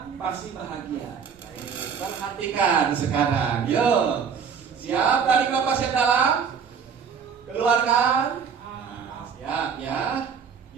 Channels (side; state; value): left; quieter; 6.6 dB